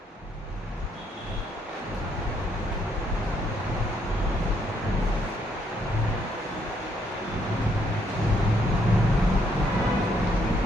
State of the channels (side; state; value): both; normal; correlation 0.71